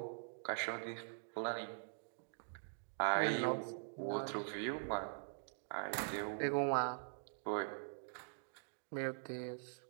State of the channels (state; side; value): silent; left; digital silence